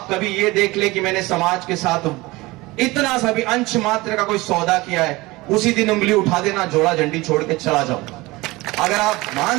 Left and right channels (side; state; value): left; quieter; 21.4 dB